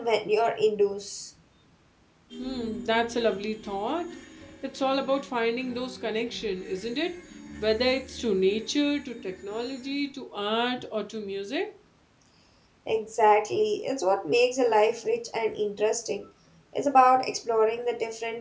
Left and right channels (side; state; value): both; identical; correlation 1.00